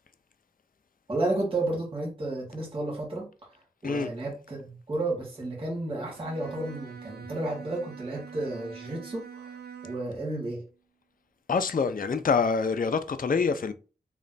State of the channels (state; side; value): normal; both; correlation 0.58